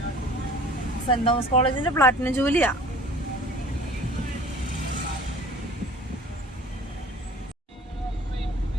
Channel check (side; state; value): both; normal; correlation 0.46